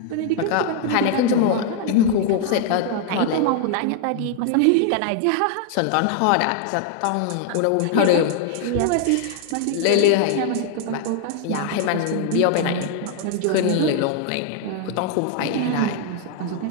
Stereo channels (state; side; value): different; both; correlation 0.00